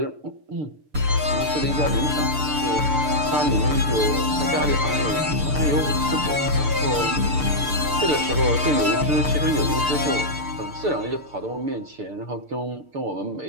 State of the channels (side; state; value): left; late; 6.8 ms